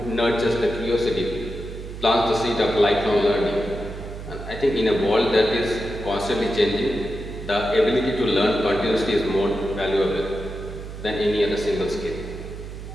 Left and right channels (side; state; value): right; noise; hum, 10 dB below the sound